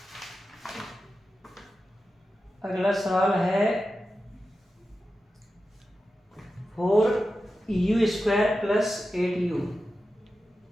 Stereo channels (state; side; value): normal; both; correlation 0.92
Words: अगला सवाल है 4u² plus 8u।